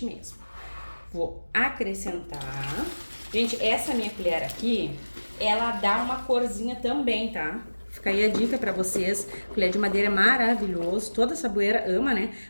mesmo. Vou acrescentar. Gente, essa minha colher aqui, ela dá uma corzinha também, tá? Fica aí a dica pra vocês. Colher de madeira é maravilhoso, toda saboeira ama, né?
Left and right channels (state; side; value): inverted; both; correlation -1.00